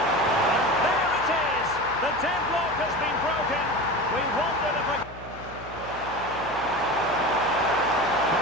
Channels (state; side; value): noise; left; hum, 17 dB below the sound